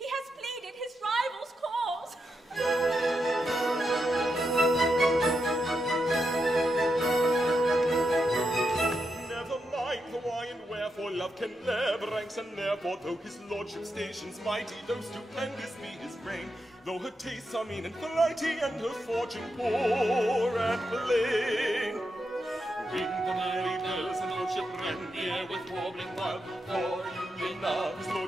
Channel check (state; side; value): normal; both; correlation 0.85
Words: has pleaded his rival's cause. love can never ranks, and therefore, though his lordship's station's mighty, though stupendous be his reign, though her tastes are mean and flighty, and her fortune poor and plain. Ring the merry bells, and lordship rend the air with warbling wild, for union of his